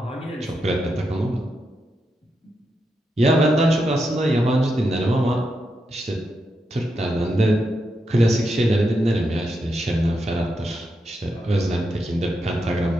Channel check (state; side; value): normal; both; correlation 0.85